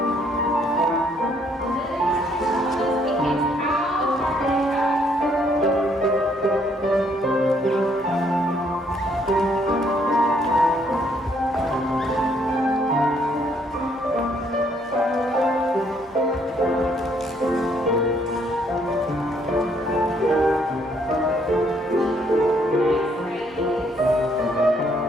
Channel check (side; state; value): both; normal; correlation 0.68